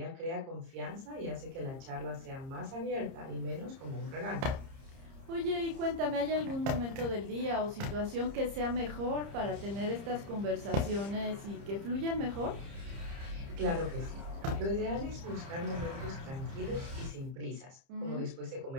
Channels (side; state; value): left; late; 30 ms